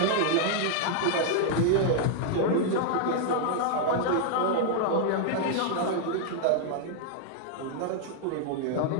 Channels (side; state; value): both; different; correlation 0.00